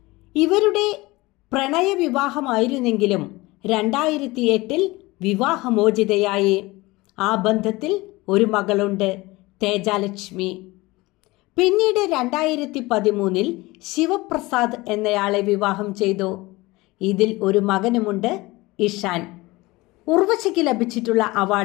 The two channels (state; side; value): quieter; right; 21.2 dB